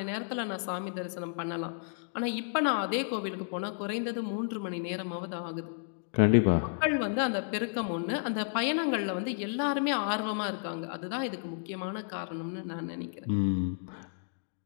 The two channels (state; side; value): silent; right; digital silence